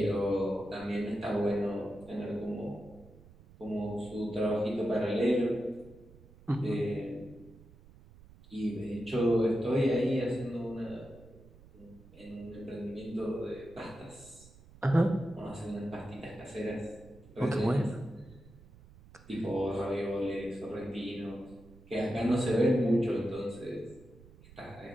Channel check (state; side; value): noise; right; rumble, 22 dB below the sound